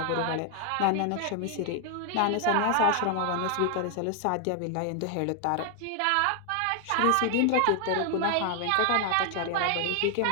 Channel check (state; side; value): different; both; correlation 0.00